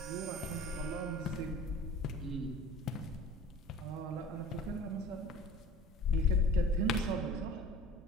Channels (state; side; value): normal; both; correlation 0.42